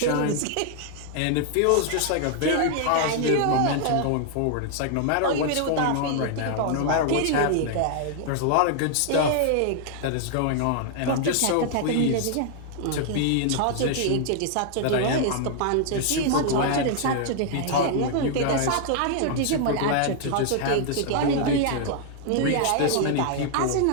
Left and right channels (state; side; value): different; both; correlation 0.00